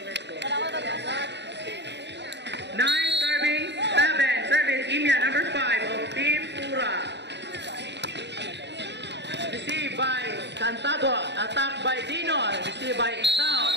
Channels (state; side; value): late; left; 0.50 ms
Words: 9 serving 7. Service Imya number 5 of Team Ura. Received by Cantago, attacked by Dino, received by